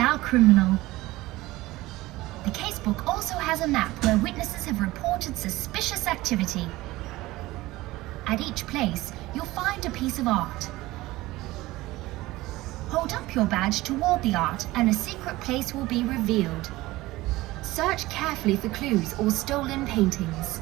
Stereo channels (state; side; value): quieter; left; 18.6 dB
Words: criminal. The casebook also has a map where witnesses have reported suspicious activity. At each place, you'll find a piece of art. Hold up your badge toward the art and a secret place will be revealed. Search carefully for clues or stolen paintings.